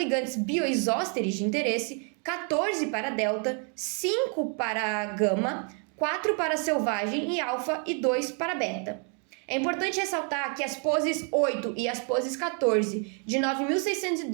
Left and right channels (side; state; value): left; quieter; 39.1 dB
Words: bioisósteres de interesse, 14 para delta, 5 para gama, 4 para selvagem e alfa e 2 para beta. É importante ressaltar que as poses 8 e as poses 14 de